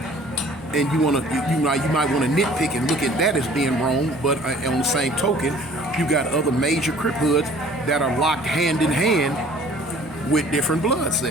And you might want to nitpick and look at that as being wrong, but on the same token, you got other major Crip hoods that are locked hand in hand with different blood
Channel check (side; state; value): both; normal; correlation 0.51